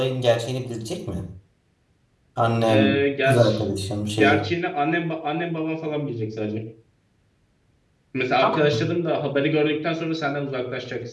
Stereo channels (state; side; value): identical; both; correlation 1.00